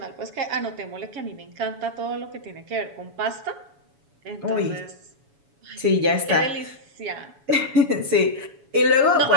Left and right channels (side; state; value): left; late; 7.1 ms